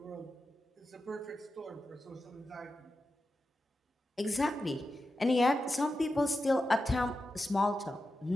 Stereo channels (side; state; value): both; normal; correlation 0.90